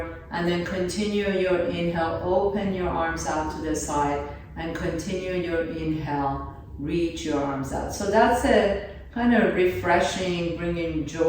and then continue your inhale, open your arms out to the side, and continue your inhale, reach your arms out. So that's a kind of refreshing, bringing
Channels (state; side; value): identical; both; correlation 1.00